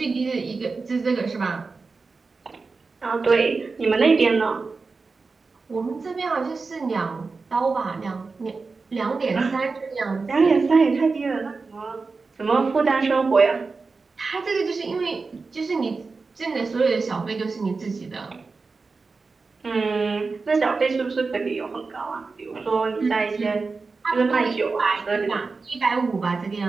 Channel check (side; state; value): left; quieter; 4.2 dB